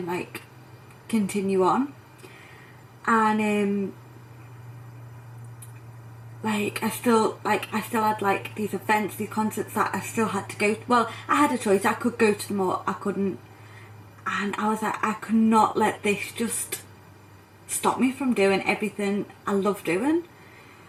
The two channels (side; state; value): both; identical; correlation 1.00